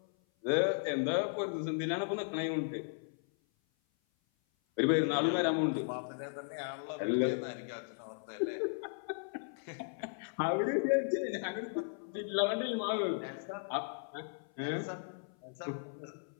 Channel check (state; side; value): silent; right; 54 dB below the other